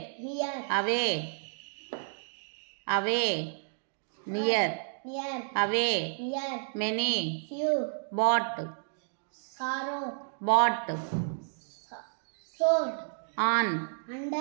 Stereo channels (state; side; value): silent; left; digital silence